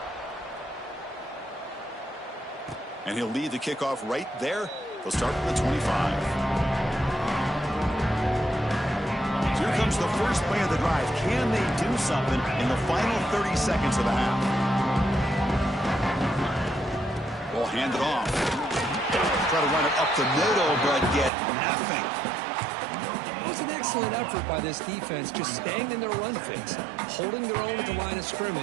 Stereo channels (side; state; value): left; drops out; at 21.3 s